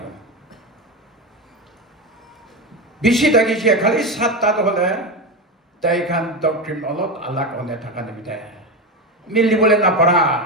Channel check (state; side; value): normal; both; correlation 0.17